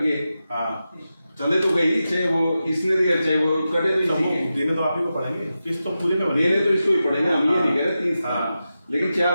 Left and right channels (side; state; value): both; inverted; correlation -0.91